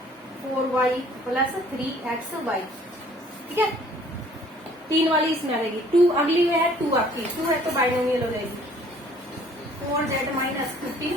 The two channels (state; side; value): normal; both; correlation 0.56